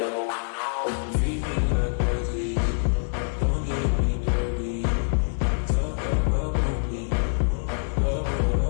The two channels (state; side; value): silent; right; 61 dB below the other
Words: would know. Treat me like crazy, don't get me dirty. Talk about me, love